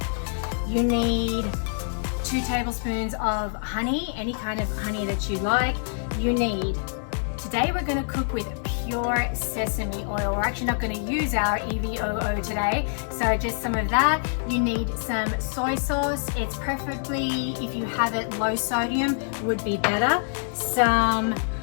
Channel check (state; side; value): silent; right; 61 dB below the other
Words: You need 2 tablespoons of honey, any kind of honey that you like. Today we're going to cook with pure sesame oil. We're actually not going to use our EVOO today, so just some of that. You need some soy sauce. It's preferably, if you have it low sodium, would be better. Some